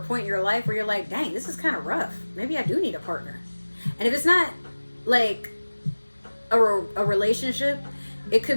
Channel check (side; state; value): both; inverted; correlation -1.00